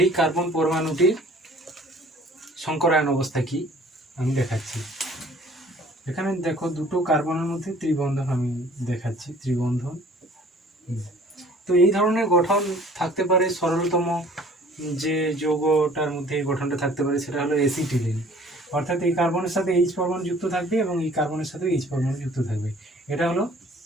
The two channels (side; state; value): both; normal; correlation 0.52